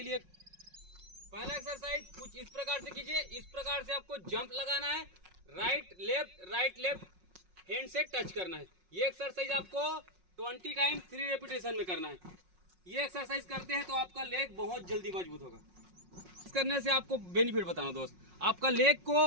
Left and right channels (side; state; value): left; late; 5.5 ms